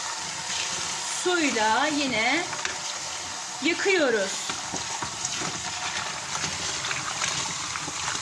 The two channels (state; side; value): identical; both; correlation 1.00